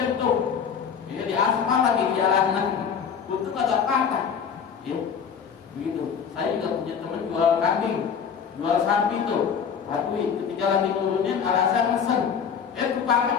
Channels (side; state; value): right; quieter; 7.0 dB